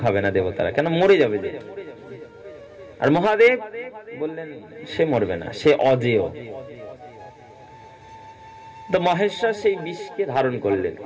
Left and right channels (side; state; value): both; identical; correlation 1.00